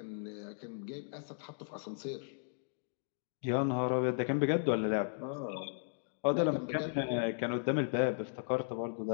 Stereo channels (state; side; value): silent; right; digital silence